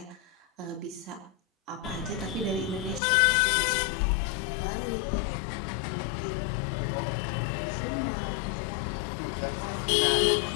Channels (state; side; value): drops out; right; at 3.0 s